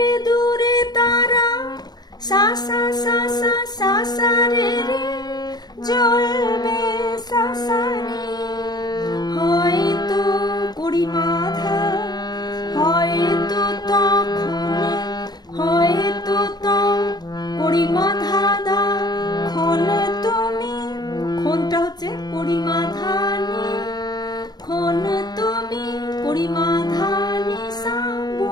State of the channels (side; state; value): right; late; 0.20 ms